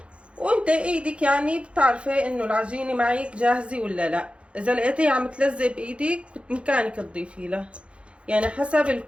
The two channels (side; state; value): left; late; 0.059 ms